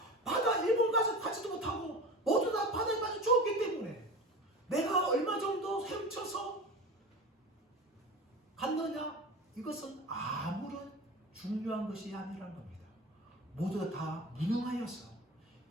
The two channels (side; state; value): both; normal; correlation 0.31